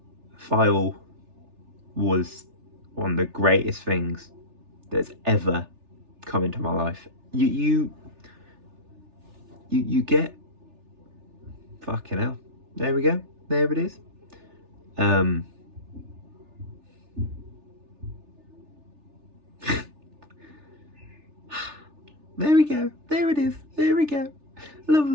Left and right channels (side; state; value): left; late; 3.3 ms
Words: File was one of the greatest things that's ever come into my life. You get, fucking hell. There we go. There it is. There we go. There it is. There we go.